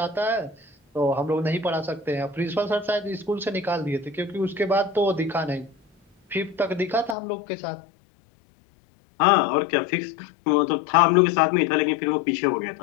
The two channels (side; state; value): right; drops out; at 7.2 s